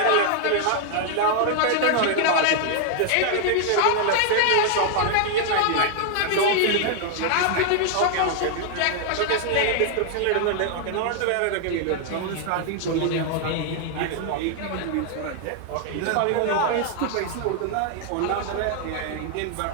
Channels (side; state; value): both; different; correlation 0.00